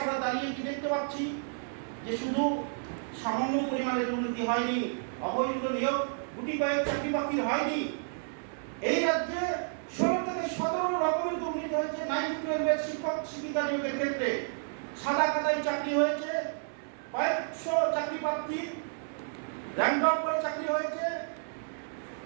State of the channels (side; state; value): left; silent; 57 dB below the other